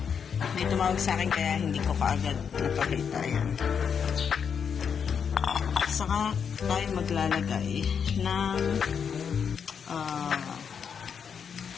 May tumawag sa akin kaya hindi ko kaagad napakita. Ayan. Saka tayo maglalagay ng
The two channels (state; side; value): quieter; right; 7.0 dB